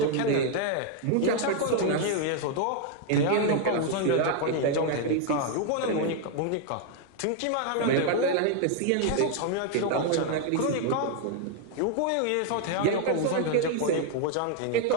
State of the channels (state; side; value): different; both; correlation 0.00